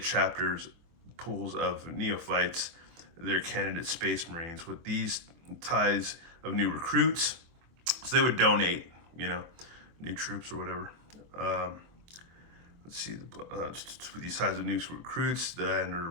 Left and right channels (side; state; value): left; late; 24 ms